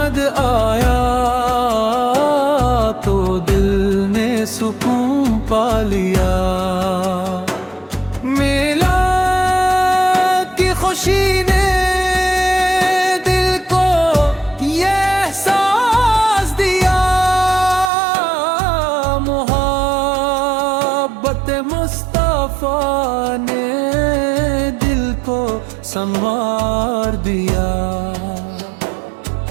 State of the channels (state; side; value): drops out; left; at 17.9 s